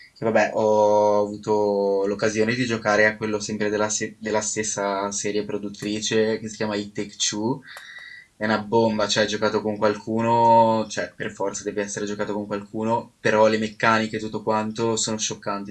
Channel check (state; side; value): identical; both; correlation 1.00